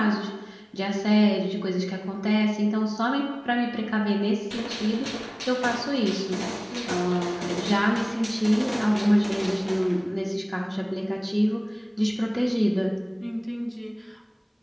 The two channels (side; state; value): both; identical; correlation 1.00